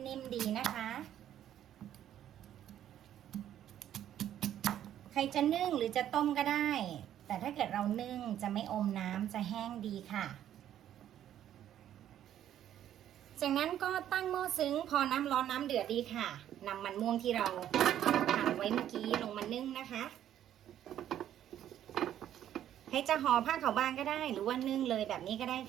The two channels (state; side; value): quieter; left; 11.1 dB